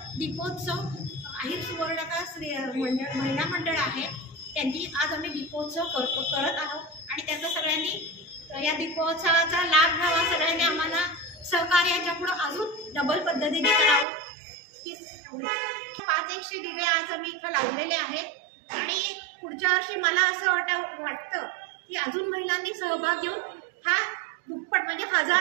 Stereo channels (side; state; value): left; drops out; at 14.1 s